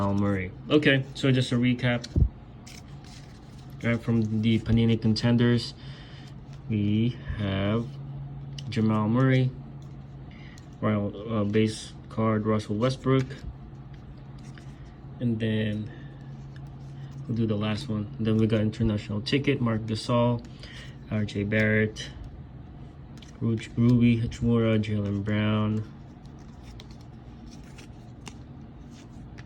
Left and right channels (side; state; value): both; identical; correlation 1.00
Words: Murray. Okay, so just a recap. Right, from the Panini contenders, we have Jamal Murray, Royal base card Russell Westbrook, and then we'll do the last one. And then we got international ticket Mark Gasol, R.J. Barrett, Ruby Hachimura, Jaylen Brown.